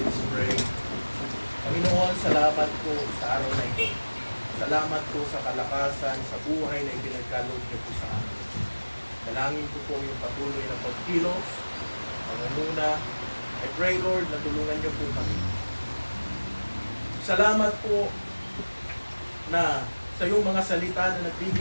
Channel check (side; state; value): both; inverted; correlation -1.00